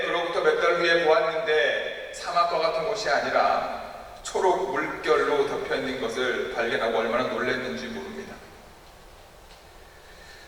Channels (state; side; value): identical; both; correlation 1.00